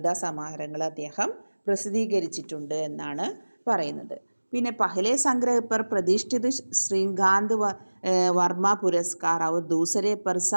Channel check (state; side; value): inverted; both; correlation -1.00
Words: സമാഹാരങ്ങൾ അദ്ദേഹം പ്രസിദ്ധീകരിച്ചിട്ടുണ്ട് എന്നാണ് പറയുന്നത്. പിന്നെ पहले संग्रह पर प्रतिष्ठित श्रीकांत वर्मा पुरस्कार और दूसरे पर